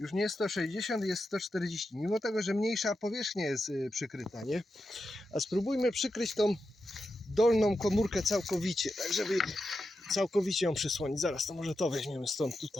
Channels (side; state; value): both; normal; correlation 0.89